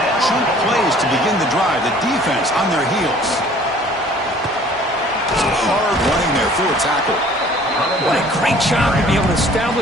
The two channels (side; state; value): both; normal; correlation 0.53